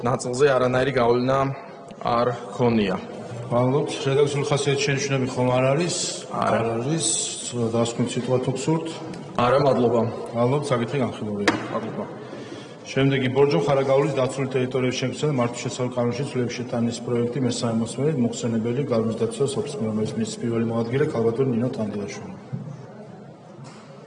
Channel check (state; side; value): identical; both; correlation 1.00